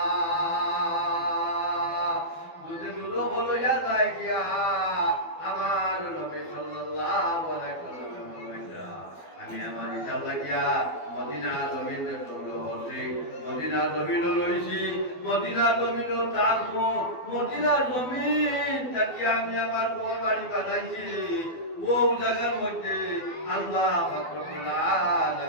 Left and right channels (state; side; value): late; right; 12 ms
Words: যদি দুজক লইয়া লাগিয়া আমার নবী সাল্লাল্লাহু আলাইহি ওয়াসাল্লাম বলেছেন আমি আমার হিসাব লাগিয়া মদিনা জমিনে সংগ্রহ করছি মদিনা জমিন লইছি মদিনা জমিন থাকবো মদিনা জমিন থাকি আমি আমার বড় বাড়ি বানাইছি ও জায়গার মধ্যে আল্লাহ পাক রব্বুল